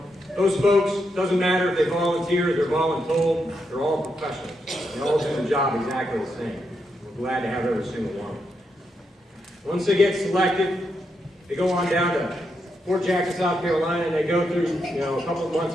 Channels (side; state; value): both; normal; correlation 0.82